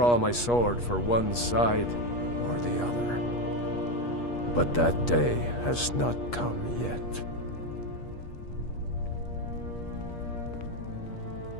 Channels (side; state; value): right; late; 8.3 ms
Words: my sword for one side or the other. But that day has not come yet.